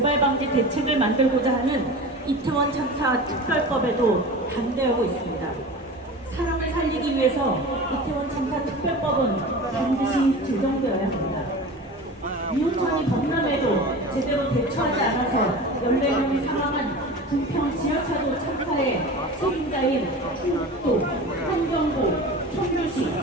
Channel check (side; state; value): both; normal; correlation 0.34